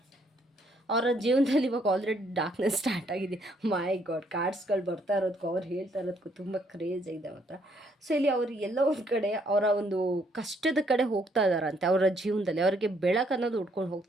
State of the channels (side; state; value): both; normal; correlation 0.69